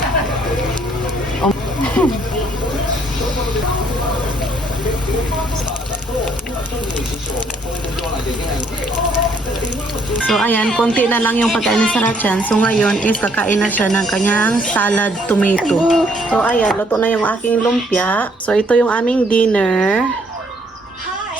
So, ayan, konti na lang yung pagkain ni Sarah-chan. So, ngayon is kakain na siya ng kanyang salad tomato. So, ayan, luto na yung aking lumpia. So, ito yung aming dinner.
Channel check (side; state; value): both; normal; correlation 0.66